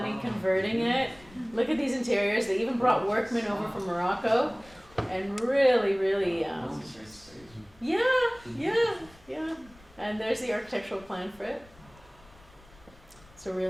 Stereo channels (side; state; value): left; noise; rumble, 25 dB below the sound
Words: converting it. Look at these interiors. They even brought workmen over from Morocco, and really, really, yeah. And there's the architectural plan for it. So